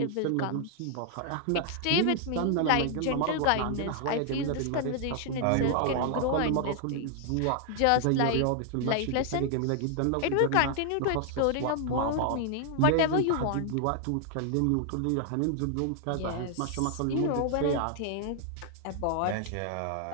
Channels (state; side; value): different; both; correlation 0.00